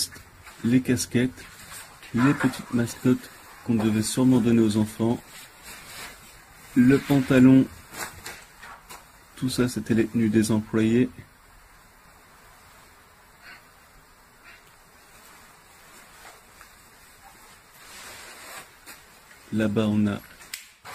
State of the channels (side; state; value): both; identical; correlation 1.00